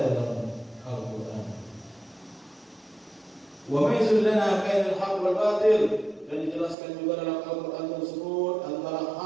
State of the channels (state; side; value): drops out; left; at 6.8 s